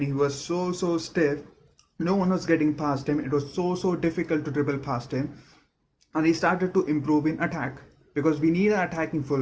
was so stiff, no one was getting past him. It was so difficult to dribble past him, and he started to improve in attack because we need an attacking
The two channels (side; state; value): both; identical; correlation 1.00